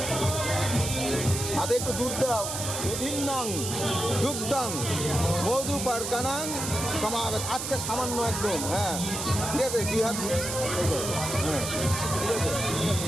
হাতে একটু দুধ দাও। দুধিন্নং দুগ্ধং মধু পারকানাং সমাগত। আচ্ছা সামান্য একদম, হ্যাঁ ঠিক আছে। দুই হাত হ্যাঁ ঠিক আছে।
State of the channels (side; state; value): right; noise; hiss, 4 dB below the sound